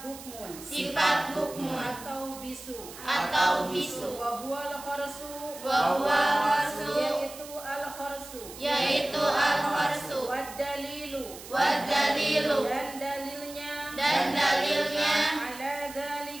bukmun. Sifat bukmun. Atau bisu. Atau bisu. Wa huwal kharsu. Wa huwal kharsu. Yaitu al-kharsu. Yaitu al-kharsu. Wad dalilu. Wad dalilu. Dan dalilnya. Dan dalilnya. Ala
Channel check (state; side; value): noise; right; hiss, 15 dB below the sound